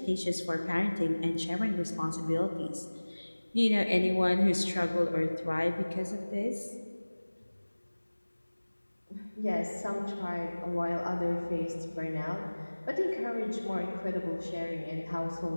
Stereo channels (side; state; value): both; inverted; correlation -1.00